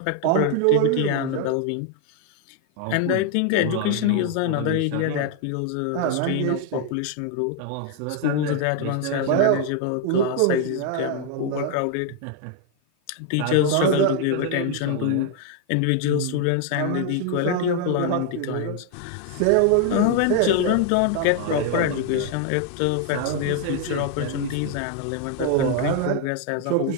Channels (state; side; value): different; both; correlation 0.00